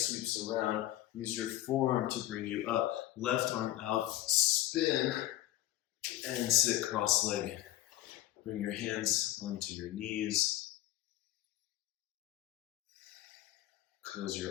around. Use your forearm to bring you up. Left arm out. Spin and sit cross-legged. Bring your hands onto your knees. Close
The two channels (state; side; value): quieter; right; 14.5 dB